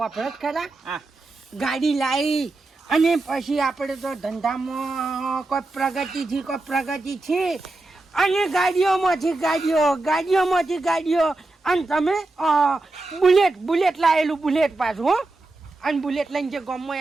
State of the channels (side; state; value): left; quieter; 3.1 dB